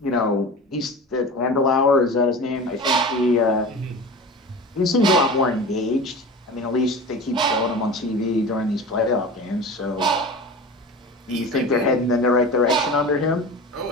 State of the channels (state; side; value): normal; both; correlation 0.33